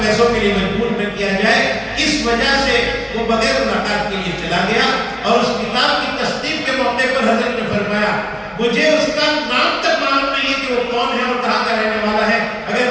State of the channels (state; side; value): identical; both; correlation 1.00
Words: پیسوں کے لیے مجبور نہ کیا جائے، اس وجہ سے وہ بغیر ملاقات کے لیے چلا گیا۔ اور اس کتاب کی تصدیق کے موقع پر حضرت نے فرمایا مجھے اس کا نام تک معلوم نہیں ہے کہ وہ کون ہے اور کہاں کا رہنے والا ہے،